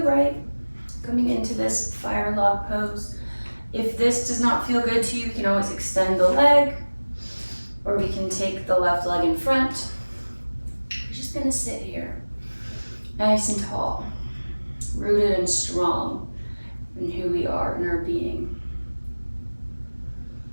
coming into this fire log pose. If this does not feel good to you, you can always extend the leg, or we can take the left leg in front. We're just gonna sit here, nice and tall, rooted and strong in who we are in our being.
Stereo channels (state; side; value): inverted; both; correlation -1.00